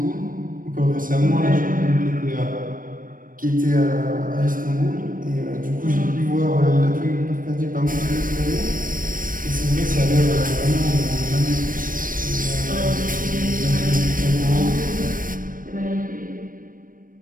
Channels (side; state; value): left; late; 0.40 ms